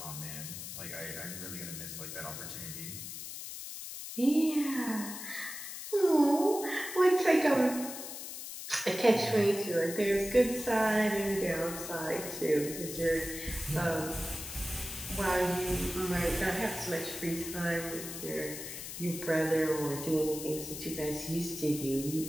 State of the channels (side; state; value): left; noise; hiss, 9 dB below the sound